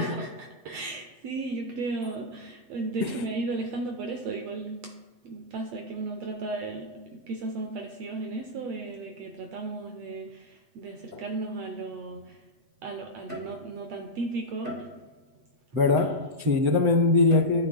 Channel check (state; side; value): late; left; 8.1 ms